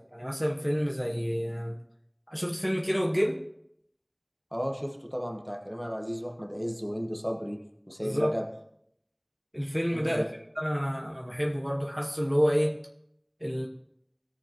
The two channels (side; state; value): both; identical; correlation 1.00